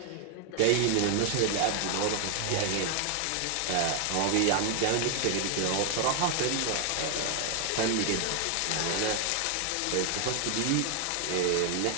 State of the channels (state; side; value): different; both; correlation 0.00